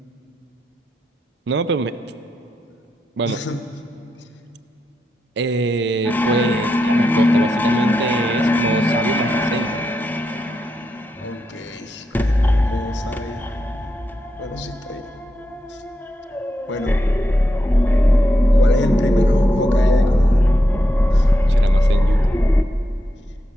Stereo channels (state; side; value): normal; both; correlation 0.85